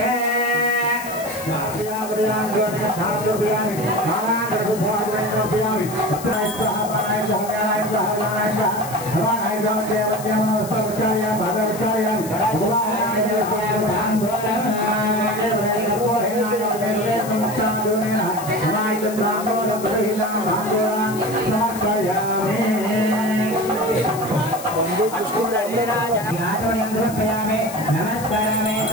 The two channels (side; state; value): left; noise; hiss, 13 dB below the sound